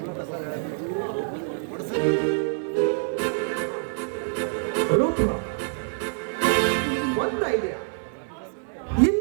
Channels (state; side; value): silent; left; 60 dB below the other